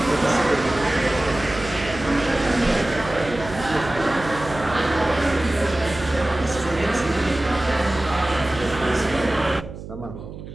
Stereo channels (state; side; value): noise; right; hum, 12 dB below the sound